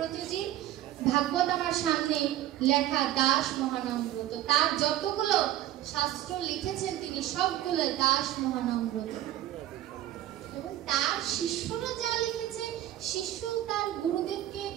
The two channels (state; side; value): quieter; left; 13.4 dB